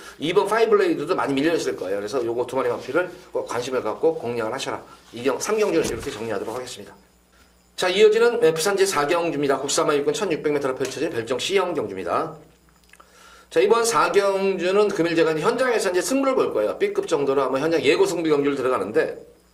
2번 파이블레이드도 많이 밀려있을 거예요. 그래서 요거 두 마리 마필을 꼭 관심을 갖고 공략을 하셔라. 3경주는 이렇게 정리하도록 하겠습니다. 자, 이어지는 부산제 4경주입니다. 국사마 육군 1600m로 펼쳐진 별정 C형 경주입니다. 자, 이번 4경주는 금일 제가 현장에서 이제 승부를 볼 거예요. B급 정도로 아마 현장 예고 승부 경주를 들어가는데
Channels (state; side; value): identical; both; correlation 1.00